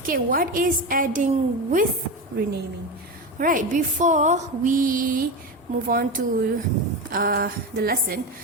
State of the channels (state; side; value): normal; both; correlation 0.20